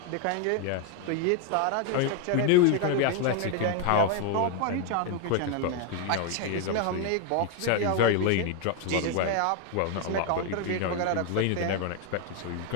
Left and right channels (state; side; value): different; both; correlation 0.01